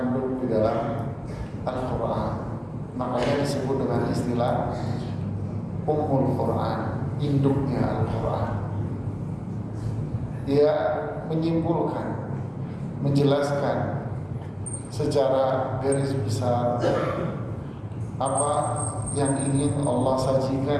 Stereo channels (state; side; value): identical; both; correlation 1.00